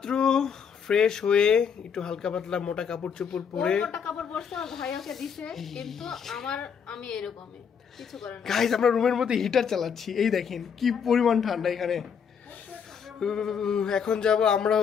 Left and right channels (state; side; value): quieter; right; 7.0 dB